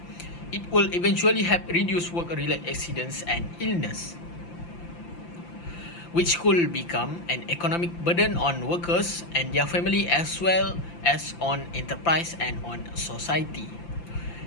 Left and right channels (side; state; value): right; late; 5.8 ms